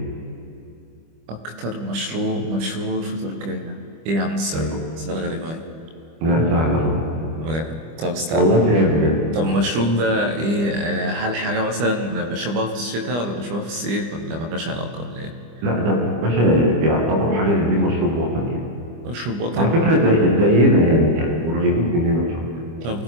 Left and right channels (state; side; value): late; left; 25 ms